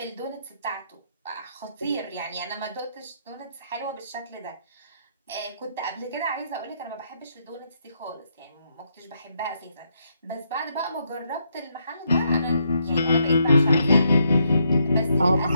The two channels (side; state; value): both; inverted; correlation -0.77